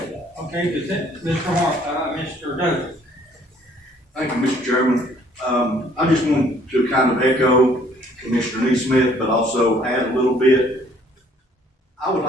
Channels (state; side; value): normal; both; correlation 0.61